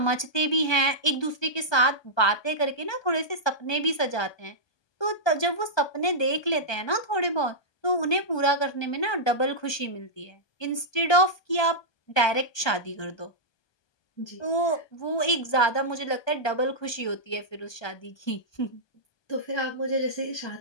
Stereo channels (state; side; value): late; right; 1.2 ms